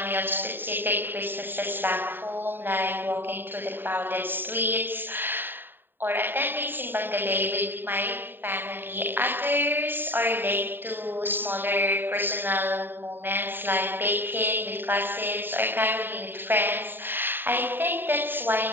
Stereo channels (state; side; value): late; left; 0.095 ms